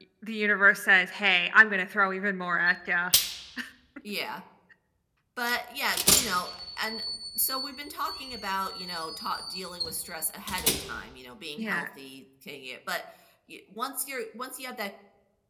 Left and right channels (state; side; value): identical; both; correlation 1.00